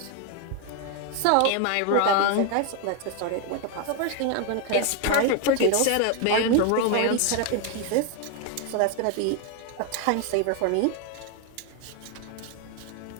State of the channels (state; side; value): different; both; correlation 0.01